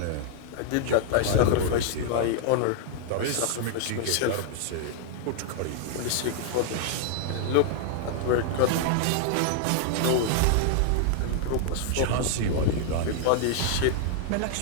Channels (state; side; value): different; both; correlation -0.01